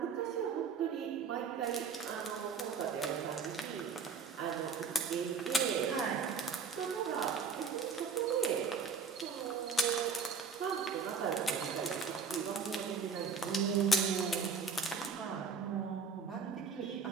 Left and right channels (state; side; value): quieter; left; 5.4 dB